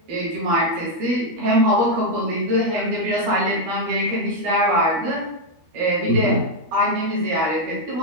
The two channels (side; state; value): left; late; 12 ms